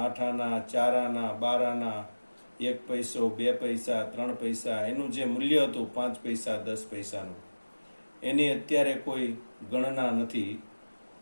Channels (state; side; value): inverted; both; correlation -1.00